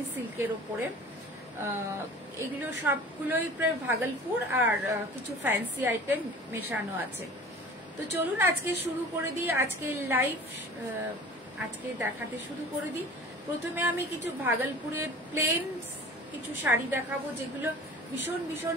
সিল্কের ওপরে। এগুলো সবগুলোই প্রায় ভাগলপুর আর কিছু ফ্যান্সি আইটেম মেশানো আছে। তো চলুন আজকে শুরু করে দিই, আজকে লাইভ আজকে দেখাতে শুরু করে দিই। প্রথমে আমি কিছু ভাগলপুরের প্লেন কিছু শাড়ি দেখাবো, যেগুলো ভীষণ ভীষণ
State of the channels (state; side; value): normal; both; correlation 0.42